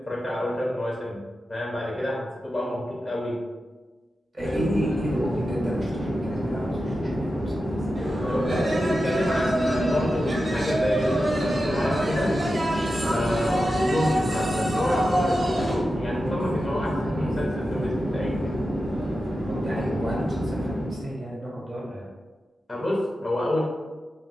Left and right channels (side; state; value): both; normal; correlation 0.91